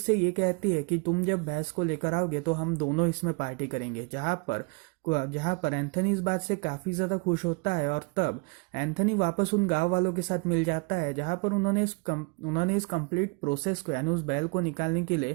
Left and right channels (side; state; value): left; quieter; 31.3 dB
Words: ये कहती है कि तुम जब भैंस को लेकर आओगे तो हम दोनों इसमें पार्टी करेंगे, जहाँ पर एंथनी इस बात से काफ़ी ज़्यादा खुश होता है। और तब एंथनी वापस उन गांव वालों के साथ मिल जाता है, जहाँ पर उन्होंने इस कंप्लीट प्रोसेस को यानी उस बैल को निकालने के